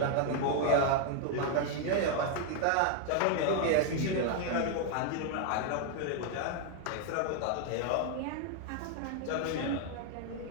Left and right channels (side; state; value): both; different; correlation 0.00